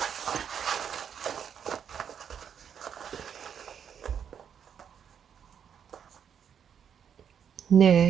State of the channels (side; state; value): left; quieter; 8.0 dB